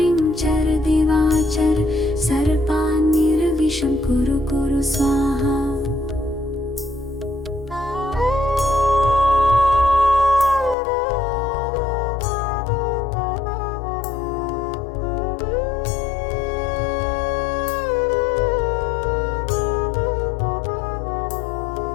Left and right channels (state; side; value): drops out; right; at 10.8 s